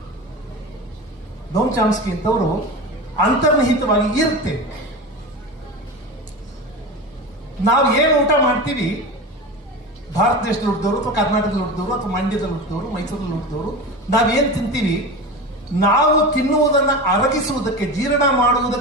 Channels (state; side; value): normal; both; correlation 0.27